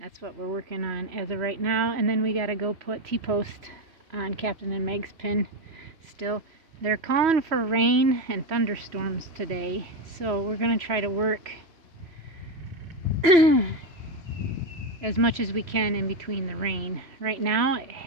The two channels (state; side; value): late; left; 3.0 ms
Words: what we're working on as of right now. And then we got to go put T-post on Captain and Meg's pen still. They're calling for rain and thunderstorms today, so we're going to try to work as much as we can in between the rain. Right now,